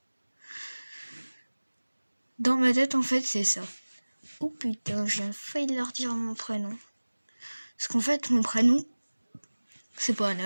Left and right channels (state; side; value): inverted; both; correlation -1.00